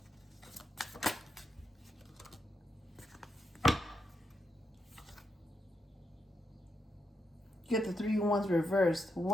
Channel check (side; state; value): both; normal; correlation 0.82